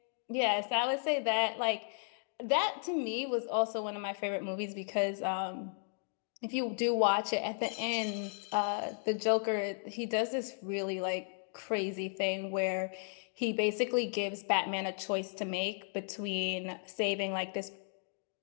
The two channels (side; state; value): right; silent; 55 dB below the other